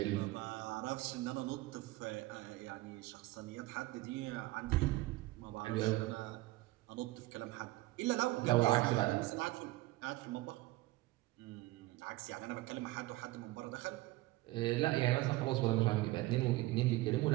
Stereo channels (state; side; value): quieter; left; 19.2 dB